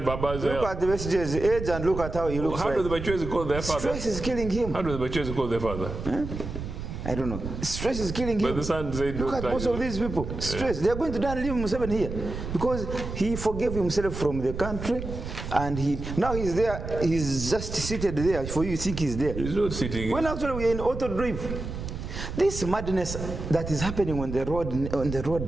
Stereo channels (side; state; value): right; noise; rumble, 7 dB below the sound